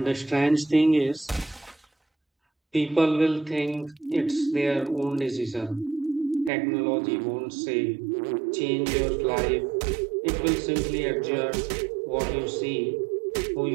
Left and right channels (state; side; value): drops out; left; at 6.5 s